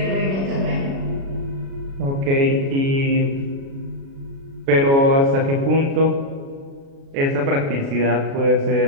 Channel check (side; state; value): left; late; 36 ms